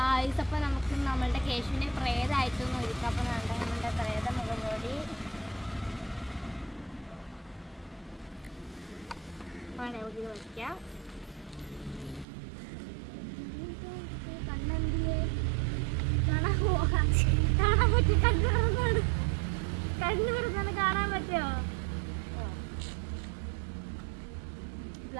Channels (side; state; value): left; drops out; at 12.2 s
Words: അപ്പോൾ നമുക്ക് നമ്മളുടെ കേശുവിനെ പ്രേതമായിട്ടൊന്നും ഒരുക്കാം. അപ്പോൾ നമ്മളുടെ പ്രേത മുഖംമൂടി നമുക്ക് വയ്ക്കാം. കണ്ണെന്തിയെ കാണാൻ പോകാൻ പറ്റും. കണ്ണു തുറന്നാണ് കാണാൻ പറ്റുമോ?